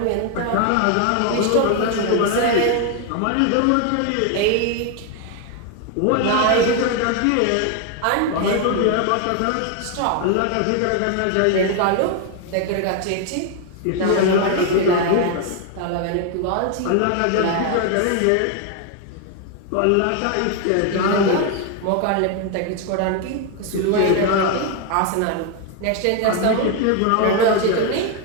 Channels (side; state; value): both; different; correlation 0.01